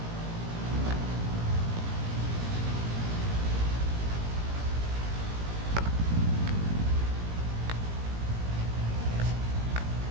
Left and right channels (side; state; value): left; late; 17 ms